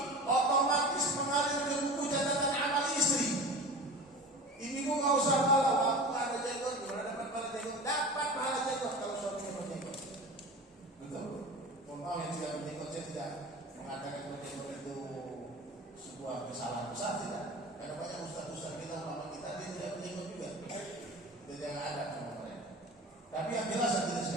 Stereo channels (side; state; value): both; normal; correlation 0.34